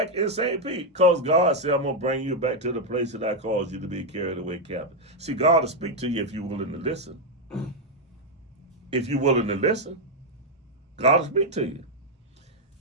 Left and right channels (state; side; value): normal; both; correlation 0.02